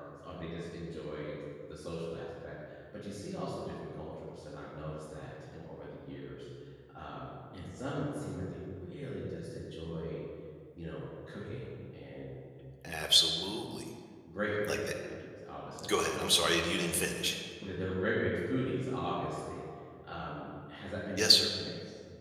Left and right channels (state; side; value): identical; both; correlation 1.00